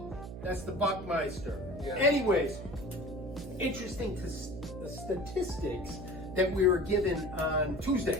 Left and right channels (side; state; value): right; noise; hum, 10 dB below the sound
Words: That's the Buckmeister. Yeah. Anyways, interesting to the statistics that we were given on